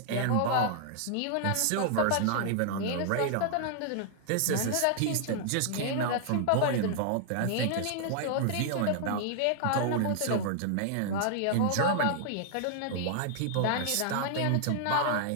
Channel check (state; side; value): different; both; correlation -0.01